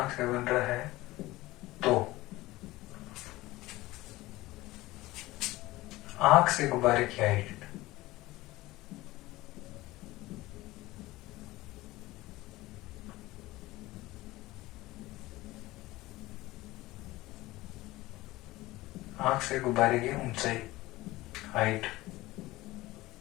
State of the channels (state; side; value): quieter; right; 18.7 dB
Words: क्या बन रहा है, तो आंख से गुब्बारे की हाइट आंख से गुब्बारे की ऊंचाई height